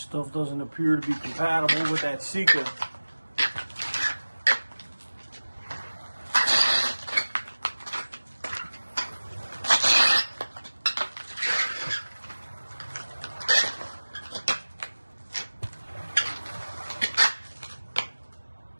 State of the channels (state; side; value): inverted; both; correlation -1.00